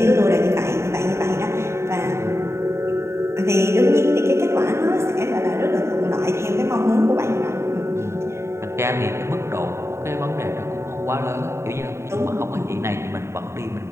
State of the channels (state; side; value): late; left; 0.13 ms